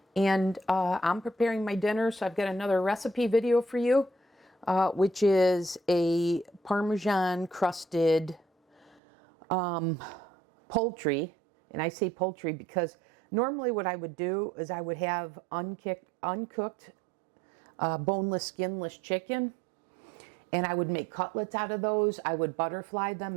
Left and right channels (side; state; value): left; drops out; at 9.0 s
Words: and I'm preparing my dinner, so I've got another recipe video for you, which is a Parmesan crusted poultry. And I say poultry because normally what I would do is I would have uncooked boneless, skinless chicken, and I would make cutlets out of those. I would butterfly